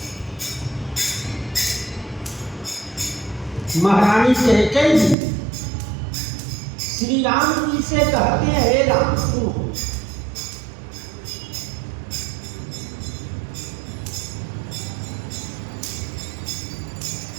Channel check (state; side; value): drops out; left; at 5.2 s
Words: महारानी कैकेयी जी श्री राम जी से कहते हैं, हे राम सुनो,